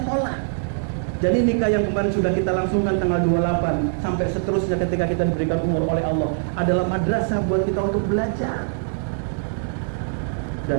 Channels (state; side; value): silent; left; digital silence